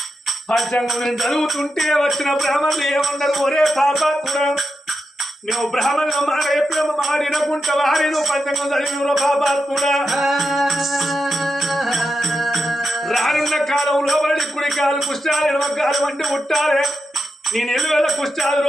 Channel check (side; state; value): both; normal; correlation 0.87